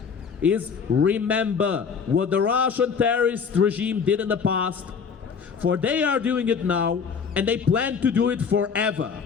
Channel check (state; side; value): quieter; right; 6.2 dB